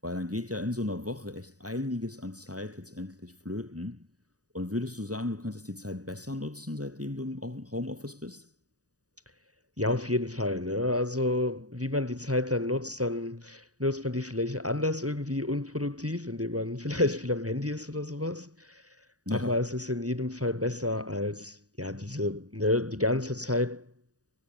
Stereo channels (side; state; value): left; late; 0.67 ms